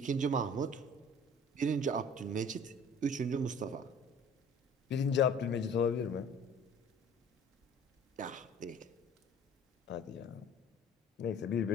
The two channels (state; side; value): normal; both; correlation 0.48